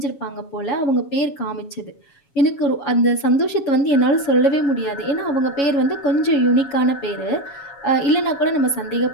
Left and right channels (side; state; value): right; late; 7.2 ms